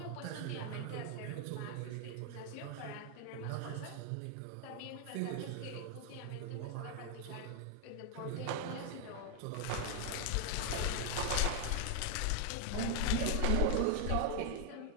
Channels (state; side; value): different; both; correlation 0.00